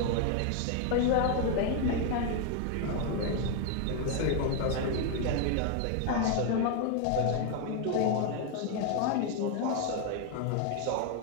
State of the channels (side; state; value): both; different; correlation 0.01